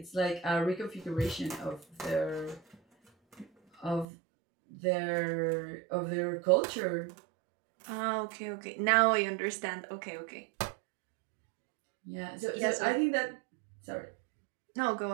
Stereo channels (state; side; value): drops out; left; at 4.0 s